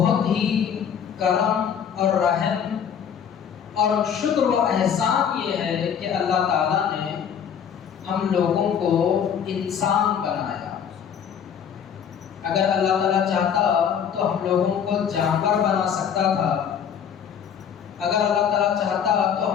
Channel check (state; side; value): quieter; right; 8.0 dB